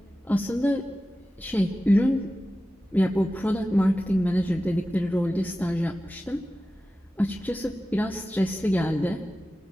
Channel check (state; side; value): normal; both; correlation 0.95